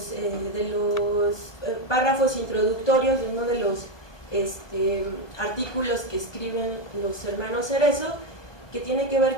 párrafos introductorios de uno de los artículos que escriben los hermanos Cerezo, que tiene que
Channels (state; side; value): late; right; 1.2 ms